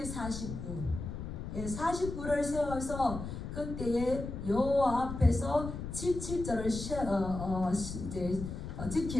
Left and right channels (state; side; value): noise; left; rumble, 7 dB below the sound